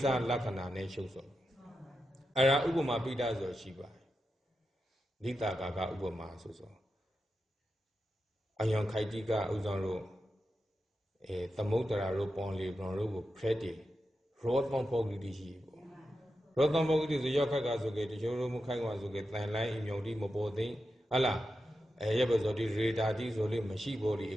စလက္ခဏာနဲ့ရှုပ်စောအဲ့ဒါဥပမာပိဋကဆိုရှိပါတယ်လိတာကာကဥပမာဆိုအယံခိုက်တိကဥဆောင်လို့သမုဒ္ဒရာတို့ပွန်လီဘွန်တို့ကိုဖရက်တီရောသံပုဂ္ဂိတိရှိပေါ့ရောသံပုဂ္ဂိတိဆိုရောက်ခက်ကဆိုကေတချို့တို့မခိုင်ကွာဆိုကေတန်လိုင်းအမြုံတိမပေါ်သိဟလားရပ်ပဲဆိုဒီရေဒါတိဆိုလေးမရှိပေါ်ဒီ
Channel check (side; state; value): both; normal; correlation 0.89